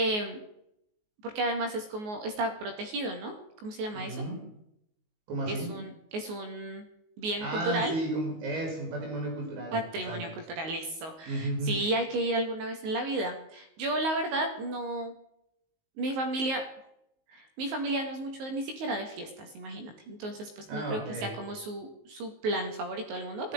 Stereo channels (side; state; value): left; late; 19 ms